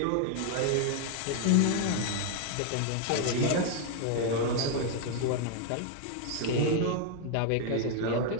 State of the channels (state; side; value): different; both; correlation 0.00